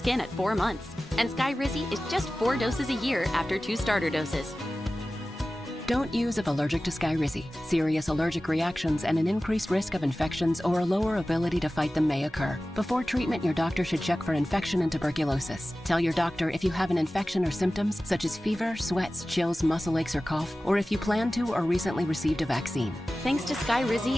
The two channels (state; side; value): normal; both; correlation 0.96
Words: at 4 months. And Skyrizi is just 4 doses a year after 2 starter doses. Don't use if allergic to Skyrizi. Serious allergic reactions and an increased risk of infections or a lower ability to fight them may occur. Before treatment, your doctor should check for infection and tuberculosis. Tell your doctor if you have an infection or symptoms such as fever, sweats, chills, muscle aches, or cough, or if you plan to or recently received a vaccine. Thanks to